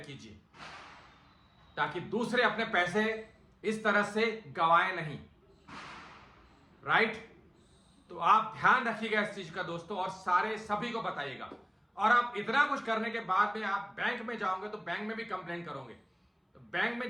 कीजिए ताकि दूसरे अपने पैसे इस तरह से गवाएं नहीं, राइट। तो आप ध्यान रखिएगा इस चीज का दोस्तों और सभी को बताइएगा। और आप इतना कुछ करने के बाद में आप बैंक में जाओगे तो बैंक में भी कंप्लेंट करोगे, तो बैंक में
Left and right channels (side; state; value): both; identical; correlation 1.00